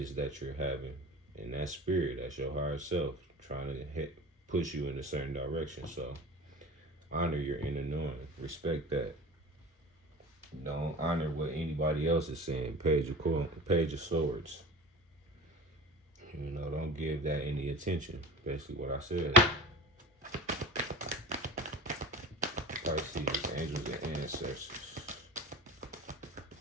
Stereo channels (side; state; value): both; normal; correlation 0.35